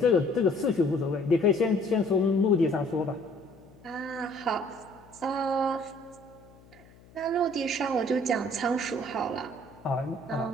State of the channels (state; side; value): noise; left; hum, 25 dB below the sound